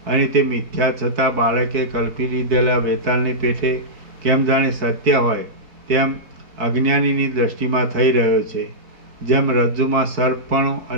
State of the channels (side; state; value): left; late; 4.6 ms